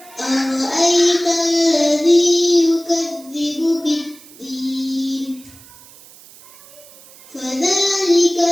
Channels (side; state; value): right; noise; hiss, 22 dB below the sound